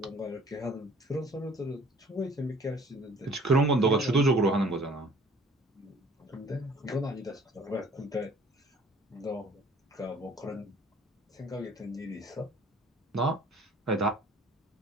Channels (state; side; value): normal; both; correlation 0.54